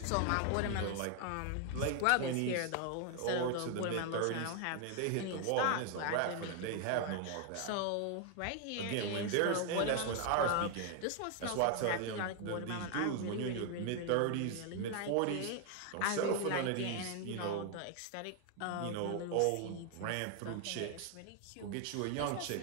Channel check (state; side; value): different; both; correlation 0.00